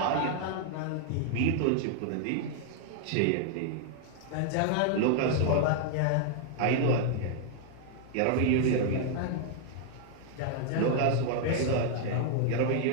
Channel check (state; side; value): different; both; correlation 0.00